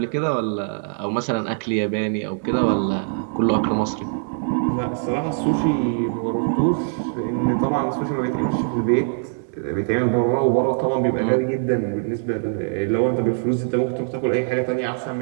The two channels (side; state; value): left; silent; 62 dB below the other